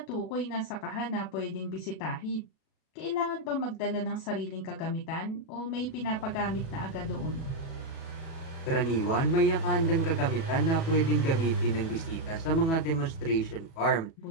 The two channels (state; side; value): late; right; 37 ms